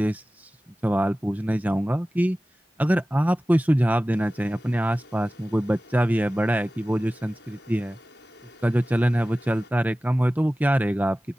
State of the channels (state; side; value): normal; both; correlation 0.96